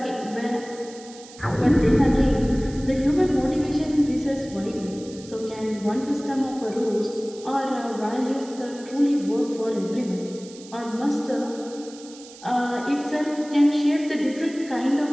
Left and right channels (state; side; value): noise; right; hiss, 19 dB below the sound